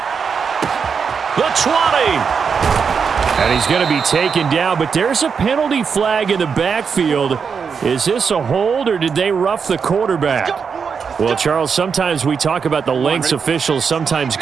The 20. And he's going to be taken down, but there's a penalty flag in the backfield. Is this a hold, or did they rough the quarterback? Well, Charles, sometimes we talk about the lengths officials sometimes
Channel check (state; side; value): quieter; left; 6.1 dB